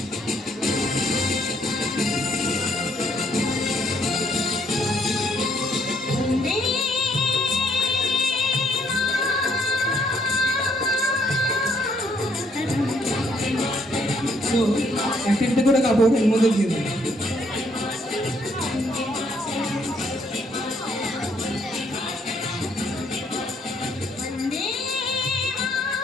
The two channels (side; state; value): both; normal; correlation 0.68